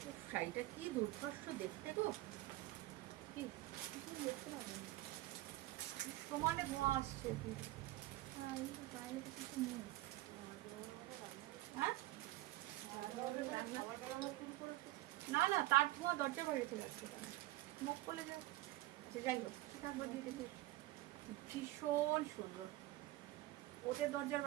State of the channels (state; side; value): quieter; left; 17.5 dB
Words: শাড়িটা কি দুর্ধর্ষ দেখতে গো, কি দেখতে পাবেন সমানে ধোঁয়া আসছে। হ্যাঁ না না, তার ধোঁয়া দরজা বাইরে চলে আসছে, মুখ বলে যাও। যাই হোক, ভীষণ সুন্দর, ওদের দরজার